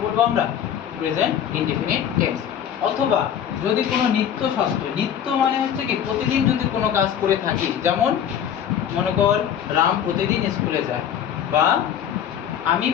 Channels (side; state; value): right; quieter; 9.2 dB